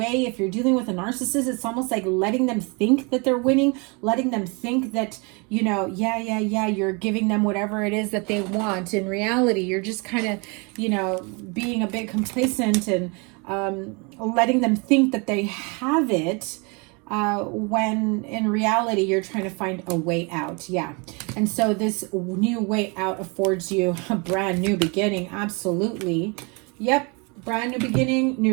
If you're dealing with a narcissist, it's almost like letting them think that they're winning, letting them think that, you know, yeah, you're giving them whatever it is that they want. In reality, you're just kind of, you know, being a bit complacent and letting them think that they have it, when in reality you're trying to find a way out. Yeah. And so this new way out affords you a brand new beginning. Absolutely. Yep. Brand new beginning,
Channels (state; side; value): quieter; left; 31.1 dB